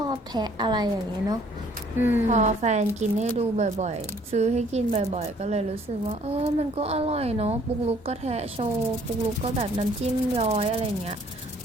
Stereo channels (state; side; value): normal; both; correlation 0.59